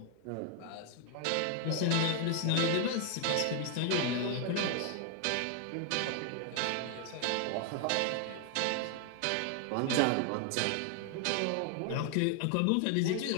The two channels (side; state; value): both; different; correlation 0.00